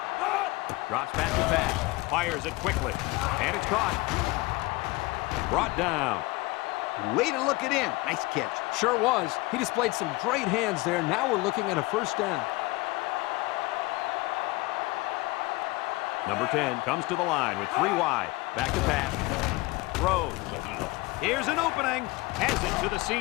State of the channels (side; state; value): right; quieter; 22.2 dB